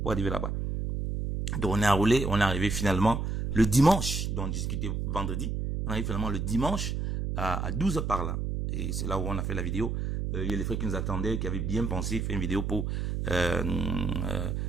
pour arriver là-bas. Donc on est enroulé, on est arrivé finalement le dimanche, donc on discutait vendredi. On arrive finalement le dimanche à 12 h par là. Et c'est là où on a fait la vidéo. Il y a les frères qui nous attendaient, qui avaient bien pensé faire une vidéo pour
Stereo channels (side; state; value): right; noise; hum, 2 dB below the sound